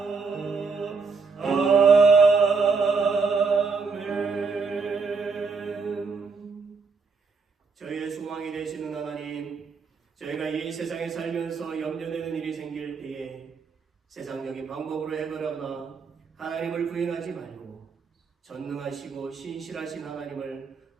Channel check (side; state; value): left; quieter; 4.8 dB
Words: 아멘. 저희의 소망이 되시는 하나님, 저희가 이 세상에 살면서 염려되는 일이 생길 때에 세상적인 방법으로 해결하거나 하나님을 부인하지 말고 전능하시고 신실하신 하나님을